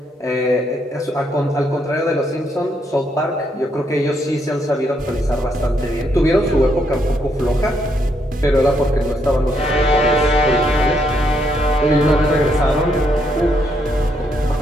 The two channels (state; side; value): normal; both; correlation 0.75